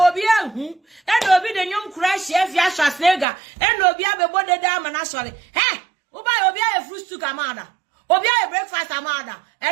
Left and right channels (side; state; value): left; drops out; at 3.2 s